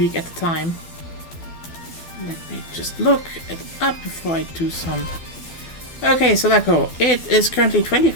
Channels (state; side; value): late; right; 12 ms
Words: at a time. Let me just look it up before I do some. Okay, Selaco, it is currently